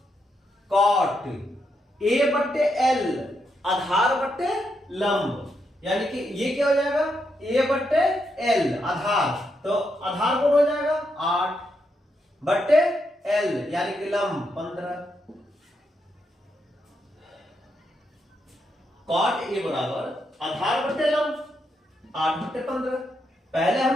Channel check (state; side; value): normal; both; correlation 0.81